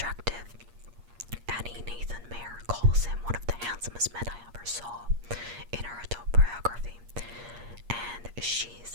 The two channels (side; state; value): left; late; 8.5 ms